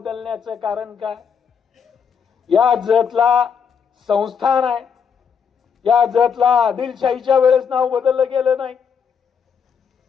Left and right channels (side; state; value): right; quieter; 6.8 dB